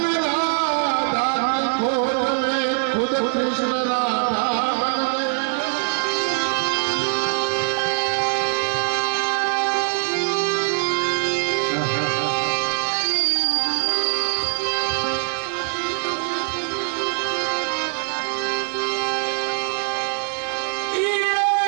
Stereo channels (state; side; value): silent; left; 64 dB below the other